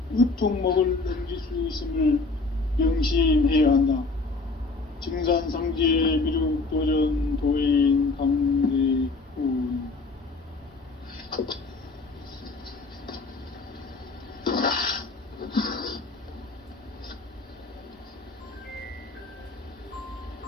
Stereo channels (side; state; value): right; quieter; 3.6 dB